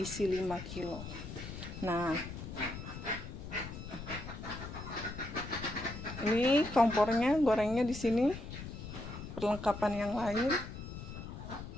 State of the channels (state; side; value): noise; left; rumble, 9 dB below the sound